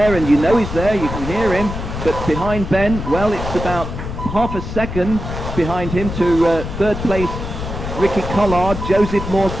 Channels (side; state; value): left; noise; rumble, 6 dB below the sound